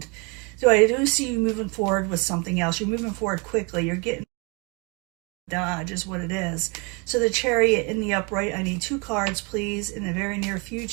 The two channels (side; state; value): left; quieter; 30.9 dB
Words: So I do see you moving forward with something else. You're moving forward quickly. You're getting dodge is what it is. So the Chariot in the upright, I need 2 cards, please, in the very near